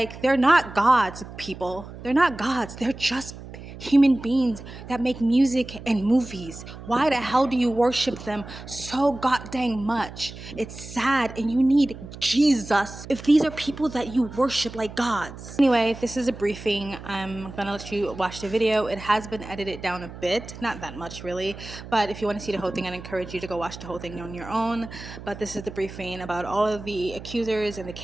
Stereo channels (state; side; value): noise; right; hum, 14 dB below the sound